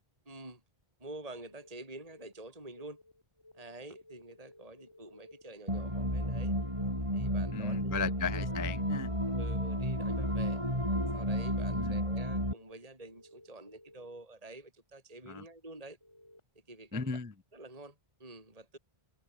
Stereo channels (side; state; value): left; late; 1.8 ms